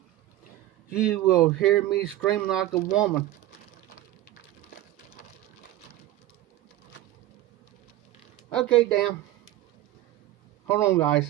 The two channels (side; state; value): left; quieter; 14.6 dB